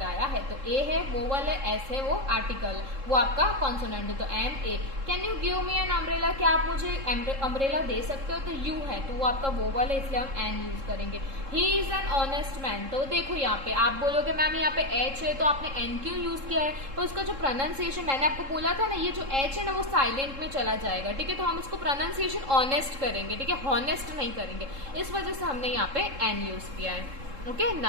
आया है, तो ए है वोवल है, एस है वो आर्टिकल, वो आपका कॉन्सोनेंट है, तो an a. Can you give me an umbrella, क्या आप मुझे अम्ब्रेला दे सकते हो, तो यू है तो वो आपका वोवल है, इसलिए हम एन यूज करेंगे। He is an honest man, तो देखो यहाँ पे आप बोलोगे मैम यहाँ पे एच है तो आपने एन क्यों यूज किया है, तो उसका जो प्रोनाउंसिएशन मैंने आपको बोला था ना, ये जो एच है ना वो साइलेंट में चला जाएगा, ठीक है। तो हम इसको प्रोनाउंसिएशन ऑनेस्ट करेंगे, ठीक है, हॉनेस्ट नहीं करेंगे, इस वजह से हमने यहाँ पे एन यूज किया है, ओके।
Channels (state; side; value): late; left; 3.7 ms